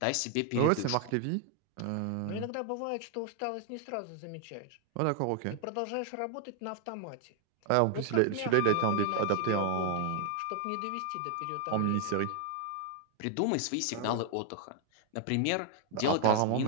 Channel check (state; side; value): different; both; correlation 0.00